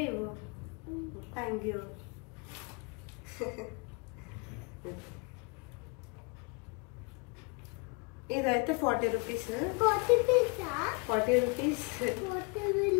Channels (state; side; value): quieter; right; 31.7 dB